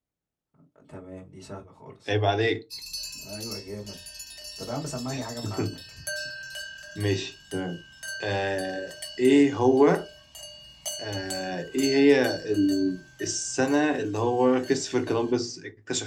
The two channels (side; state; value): both; identical; correlation 1.00